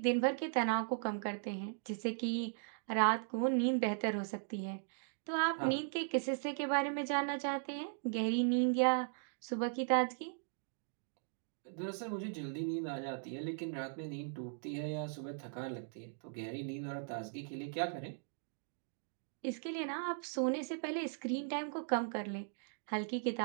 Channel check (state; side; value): silent; left; digital silence